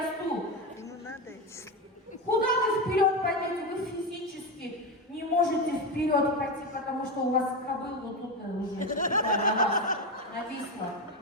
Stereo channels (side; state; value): both; normal; correlation 0.15